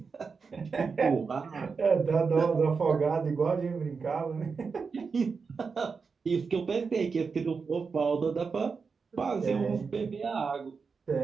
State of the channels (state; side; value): quieter; left; 5.1 dB